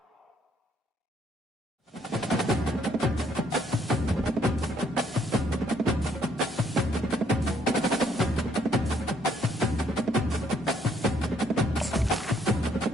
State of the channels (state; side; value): normal; both; correlation 0.67